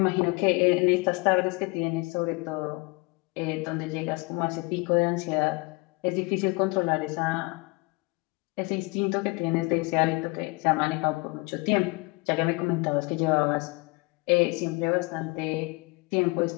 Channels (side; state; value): right; quieter; 26.7 dB